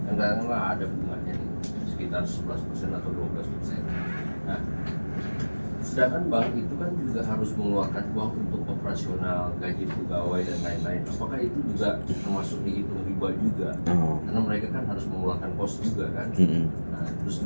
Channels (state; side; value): inverted; both; correlation -1.00